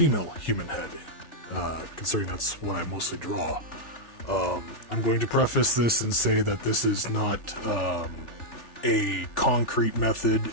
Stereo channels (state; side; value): late; right; 3.4 ms